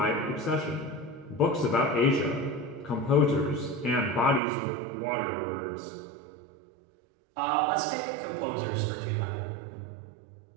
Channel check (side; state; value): left; drops out; at 4.4 s